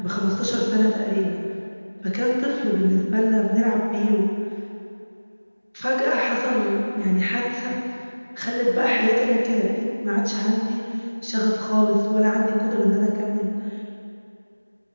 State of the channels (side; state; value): both; inverted; correlation -1.00